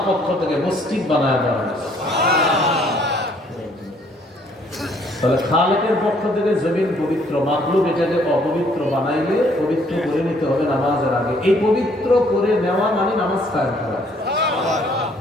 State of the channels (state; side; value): normal; both; correlation 0.63